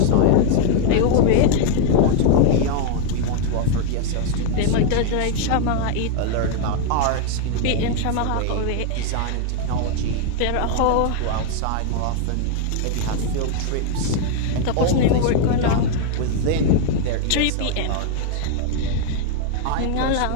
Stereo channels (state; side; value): different; both; correlation 0.01